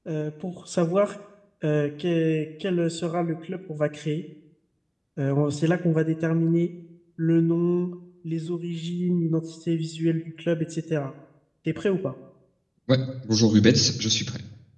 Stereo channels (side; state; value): both; identical; correlation 1.00